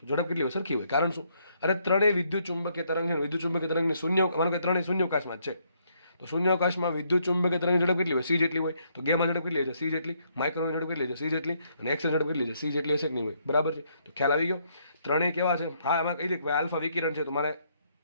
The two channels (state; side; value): inverted; both; correlation -0.72